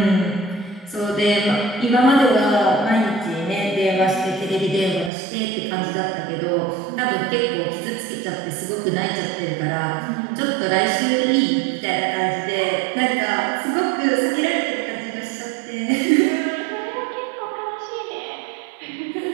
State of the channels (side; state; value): left; drops out; at 5.1 s